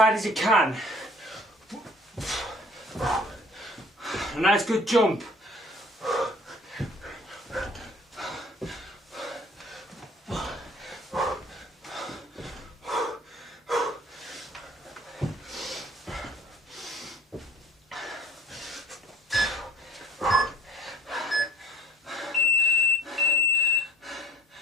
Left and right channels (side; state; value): both; normal; correlation 0.51